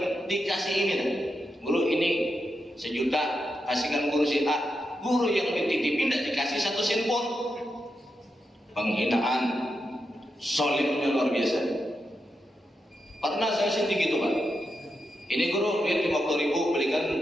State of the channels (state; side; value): normal; both; correlation 0.86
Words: dikasih ini dah. Guru ini 1 juta, kasihkan guru si A. Guru yang dititipin tidak dikasih 1 sen pun. Penghinaan, zalimnya luar biasa. Pernah saya sendiri gitu Pak. Ini guru duit 50.000, belikan